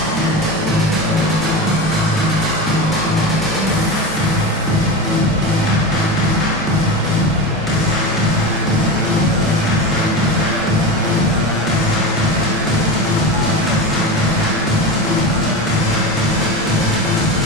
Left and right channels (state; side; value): normal; both; correlation 0.24